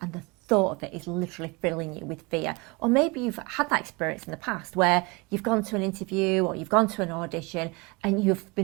and the thought of it is literally filling you with fear? Or maybe you've had that experience in the past where you've gone to an interview or you've gone to an audition and you've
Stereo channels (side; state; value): left; quieter; 27.0 dB